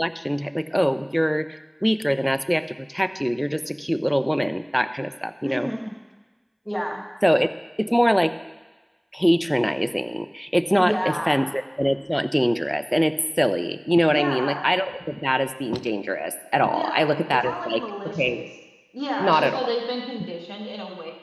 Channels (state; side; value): identical; both; correlation 1.00